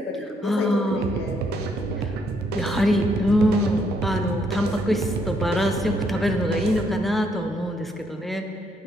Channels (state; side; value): normal; both; correlation 0.72